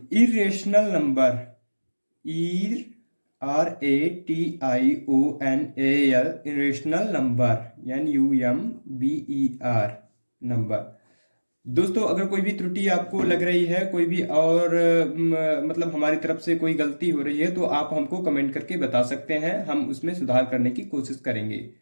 irrational number. RATIONAL, irrational number, NUMBER number. दोस्तों अगर कोई भी त्रुटि आपको लग रही है, कोई भी और मतलब हमारी तरफ से कोई गलती हो रही है, तो आप हमको कमेंट करके बता सकते हैं, हम उसमें सुधार करने की कोशिश करेंगे।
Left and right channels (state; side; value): inverted; both; correlation -1.00